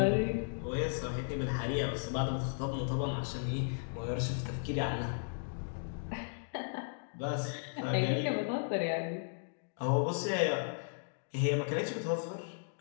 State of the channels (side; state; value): right; silent; digital silence